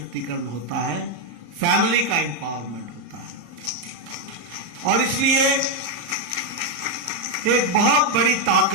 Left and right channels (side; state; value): left; late; 35 ms